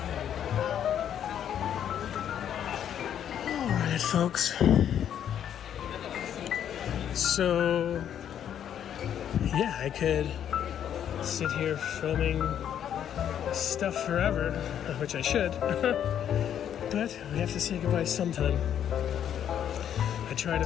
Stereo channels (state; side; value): quieter; right; 9.6 dB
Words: Alright, folks. So, yeah, I could sit here filming stuff forever, which I should, but we have to say goodbye sometime. I try to